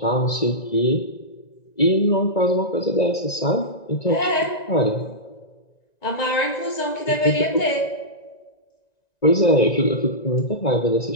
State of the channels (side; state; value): right; late; 1.9 ms